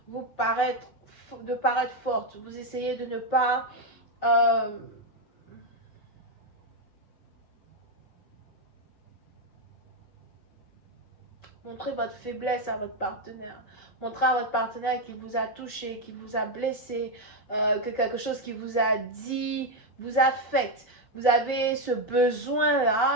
paraître forte, vous essayez de ne pas montrer votre faiblesse à votre partenaire. Montrer à votre partenaire qu'il vous a touché, qu'il vous a blessé, que quelque chose qu'il vous a dit vous affecte. Vous avez ce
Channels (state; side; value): late; right; 5.2 ms